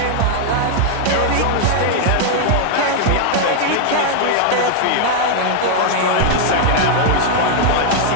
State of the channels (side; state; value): both; different; correlation -0.01